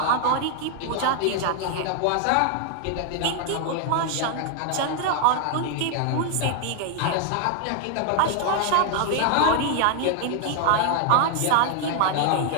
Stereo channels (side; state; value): both; different; correlation 0.00